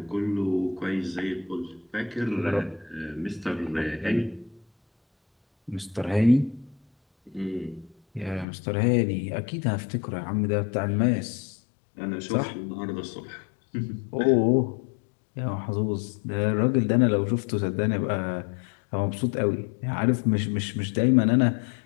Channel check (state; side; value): drops out; right; at 8.5 s